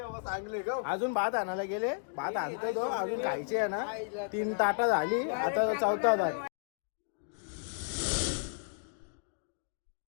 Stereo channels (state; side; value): silent; right; digital silence